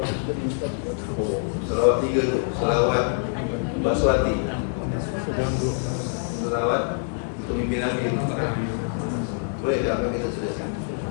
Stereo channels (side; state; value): right; silent; digital silence